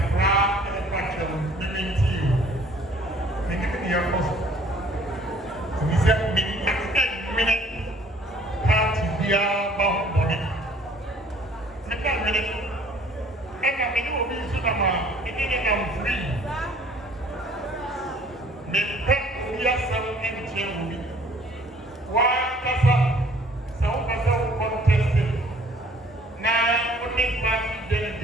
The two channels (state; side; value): normal; both; correlation 0.56